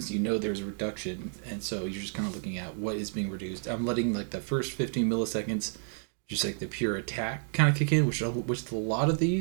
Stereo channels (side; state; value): left; silent; 57 dB below the other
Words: you know there's a reduction, and so you're just kind of looking at what is being reduced. I'm letting like the first 15 milliseconds, just like the pure attack kind of kick in, which a lot of